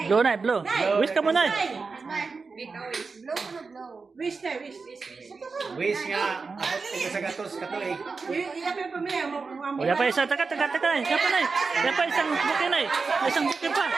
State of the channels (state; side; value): quieter; left; 4.5 dB